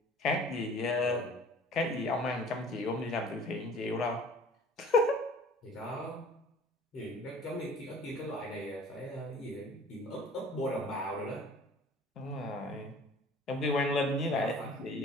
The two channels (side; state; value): both; normal; correlation 0.48